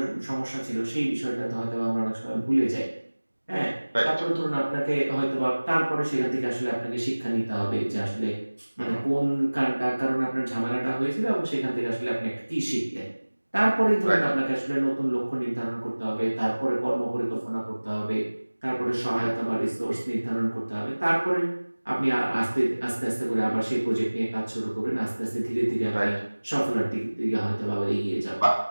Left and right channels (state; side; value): inverted; both; correlation -1.00